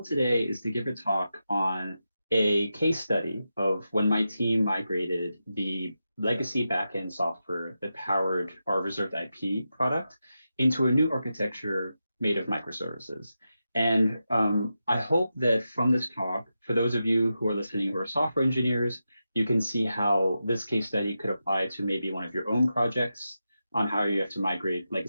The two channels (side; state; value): both; inverted; correlation -0.89